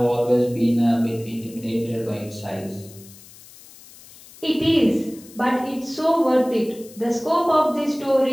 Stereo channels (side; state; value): left; noise; hiss, 21 dB below the sound